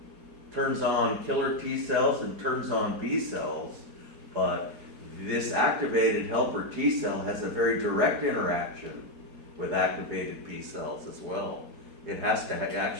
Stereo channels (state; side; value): late; left; 4.8 ms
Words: turns on killer T cells and turns on B cells, but this activated helper T cell has a very direct interaction with activated B cells as well. It has to